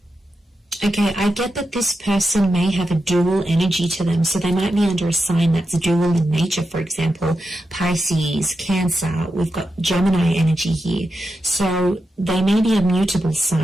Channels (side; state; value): both; normal; correlation 0.88